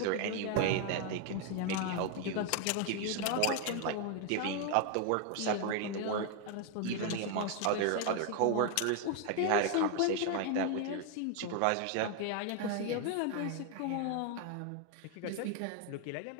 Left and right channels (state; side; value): different; both; correlation 0.01